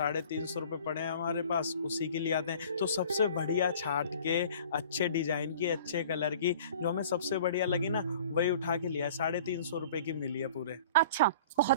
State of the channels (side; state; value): both; inverted; correlation -0.47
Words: रुपये पड़े हैं हमारे पास, उसी के लिए आते हैं। तो सबसे बढ़िया छाट के, अच्छे डिजाइन की, अच्छे कलर की, जो हमें सबसे बढ़िया लगी ना, वही उठा के लिया। 350 रुपये की मिली है पूरे। अच्छा,